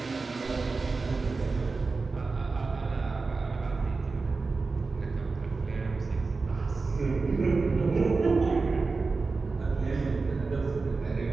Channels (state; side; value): quieter; left; 4.1 dB